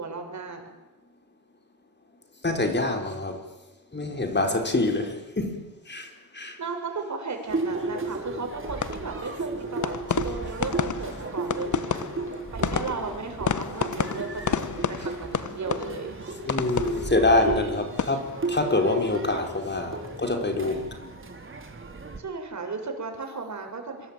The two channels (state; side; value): normal; both; correlation 0.03